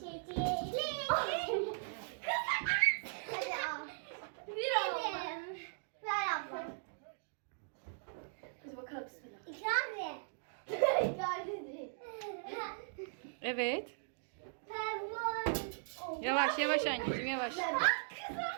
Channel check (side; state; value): left; silent; digital silence